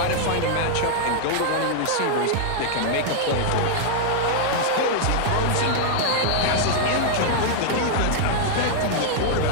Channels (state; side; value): different; both; correlation -0.01